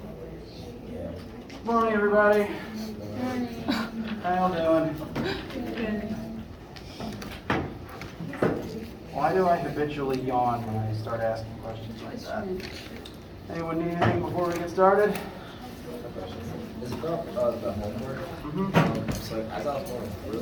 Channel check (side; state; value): both; identical; correlation 1.00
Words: Morning, everybody. Morning. How y'all doing? Good. Why do I habitually yawn when I start asking questions like that? Anyone need anything before we get started? It's about the homework. So like, as I was going through